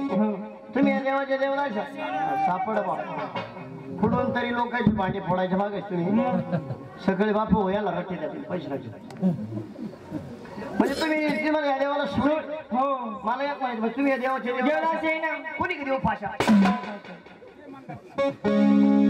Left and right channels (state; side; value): identical; both; correlation 1.00